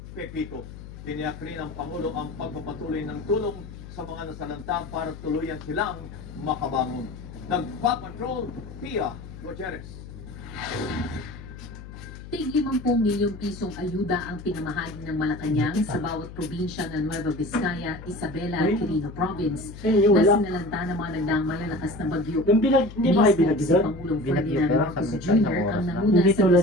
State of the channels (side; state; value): left; noise; hum, 14 dB below the sound